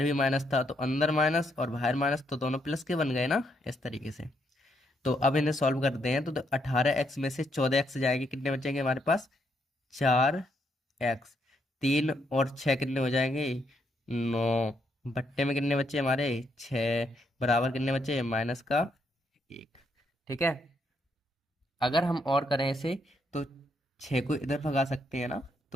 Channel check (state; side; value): normal; both; correlation 0.76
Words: भी माइनस था, तो अंदर माइनस और बाहर माइनस तो दोनों प्लस के बन गए ना, इस तरीके से। तो अब इन्हें सॉल्व करते हैं तो 18x में से 14x जाएंगे, कितने बचेंगे हमारे पास, 4x, 3 और 6 कितने हो जाएंगे, 9 बट्टे में कितने बच्चे हमारे, 6 बराबर कितने बच्चे, -1। ठीक है, अगर हम और करें इसे तो 6 को इधर भगा सकते हैं ना,